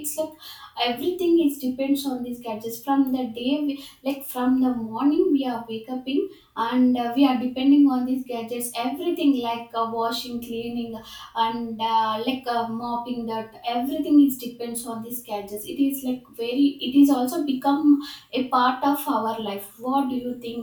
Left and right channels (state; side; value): identical; both; correlation 1.00